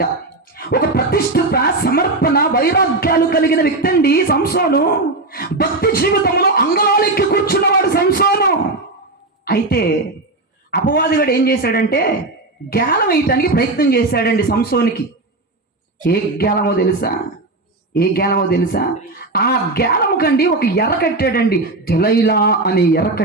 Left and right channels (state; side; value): quieter; left; 3.1 dB